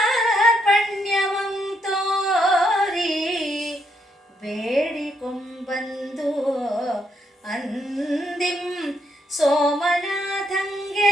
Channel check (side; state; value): both; normal; correlation 0.76